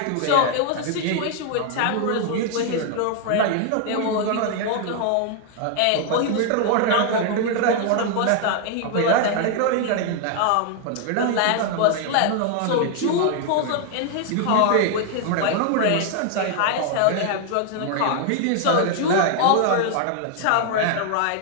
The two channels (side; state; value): both; different; correlation 0.00